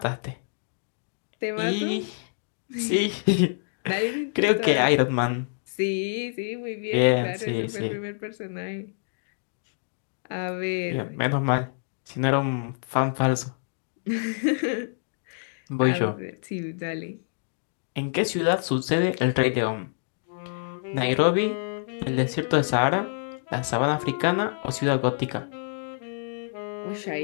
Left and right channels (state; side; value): silent; right; digital silence